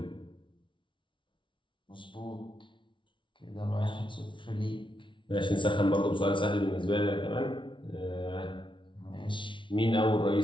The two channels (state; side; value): late; right; 0.24 ms